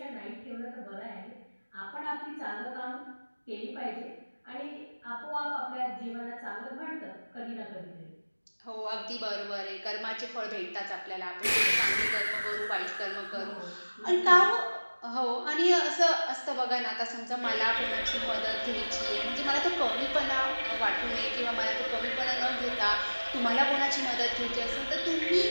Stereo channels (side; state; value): both; inverted; correlation -1.00